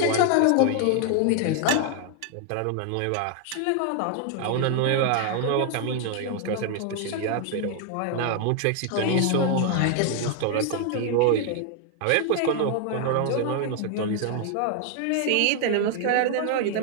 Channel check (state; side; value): different; both; correlation 0.00